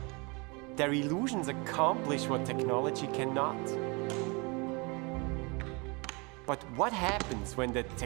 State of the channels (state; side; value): quieter; left; 29.3 dB